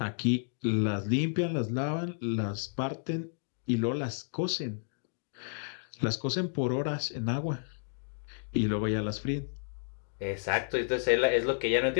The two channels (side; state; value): right; silent; digital silence